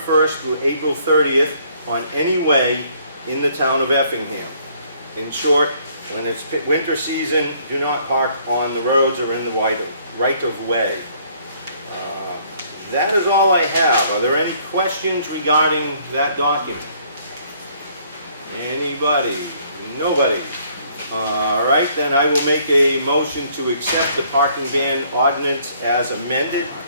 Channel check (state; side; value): inverted; both; correlation -0.63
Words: through April 30th on any way in the town of Effingham. In short, when it's winter season, do not park on the roads or in the right of way. That is all I have. Are there any questions regarding that document? Anybody? Nobody? All right, then I will make a motion to accept the parking ban ordinance as amended.